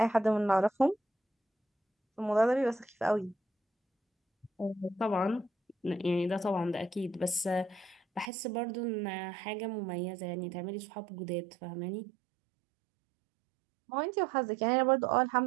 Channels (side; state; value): left; drops out; at 8.3 s